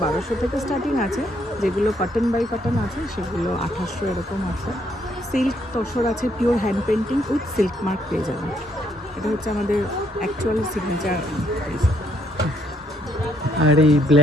থেকে স্টার্টিং আছে। যেগুলো কটন বাই কটন আছে সেগুলো 1800 এরকম আছে। সিল্ক তসর আছে pure hand painting with silk mark পেয়ে যাবেন। এটা হচ্ছে আমাদের অ্যাকচুয়াল সিগনেচার। আর এই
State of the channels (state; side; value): normal; both; correlation 0.71